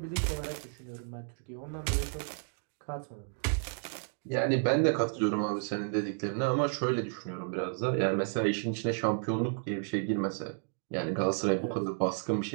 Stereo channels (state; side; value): silent; left; 56 dB below the other